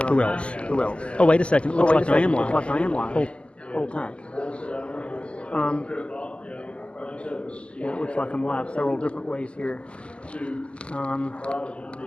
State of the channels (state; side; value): late; right; 0.053 ms